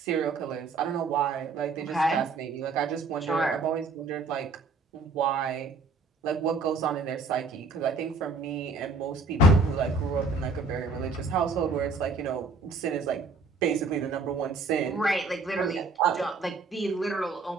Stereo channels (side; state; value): left; quieter; 3.8 dB